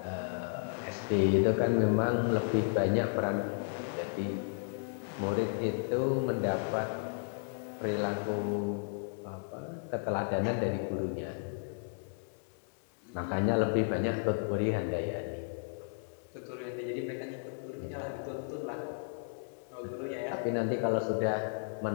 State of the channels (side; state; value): right; silent; digital silence